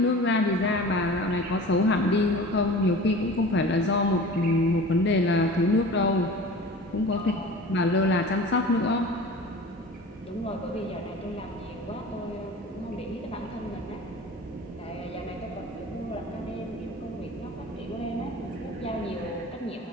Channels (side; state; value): both; normal; correlation 0.38